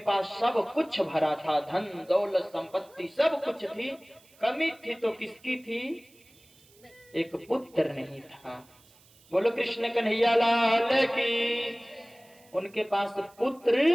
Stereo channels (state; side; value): noise; right; hiss, 28 dB below the sound